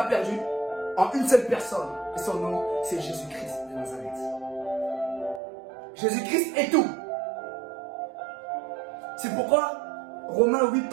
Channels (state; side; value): drops out; left; at 5.4 s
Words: perdu en une seule personne. Et son nom, c'est Jésus-Christ de Nazareth. Jésus-Christ est tout. C'est pourquoi Romains 8,